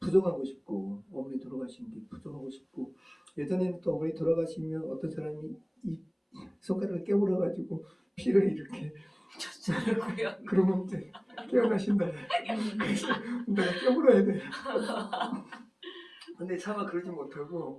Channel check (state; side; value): identical; both; correlation 1.00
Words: 싶고 어머니 돌아가신 게 부정하고 싶고 예전에는 또 어머니 돌아가시면 어떤 사람이 이 손가락을 깨물어가지고 피를 이렇게 그러면 이제 깨어나신다. 그래서 내가 깨물어야 돼. 근데 차마 그러지